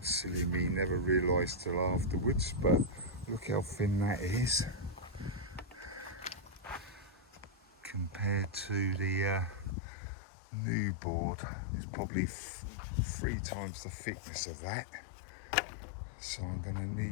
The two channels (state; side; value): drops out; right; at 9.8 s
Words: silly me, never realised till afterwards, but look how thin that is compared to the new board. It's probably 3 times the thickness of that. So I'm going to